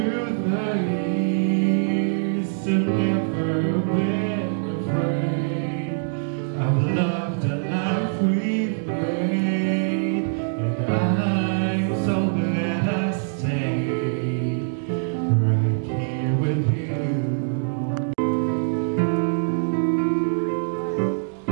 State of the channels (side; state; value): left; silent; digital silence